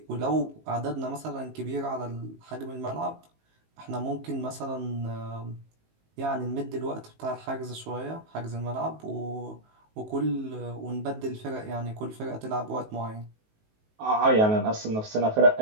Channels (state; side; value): late; left; 19 ms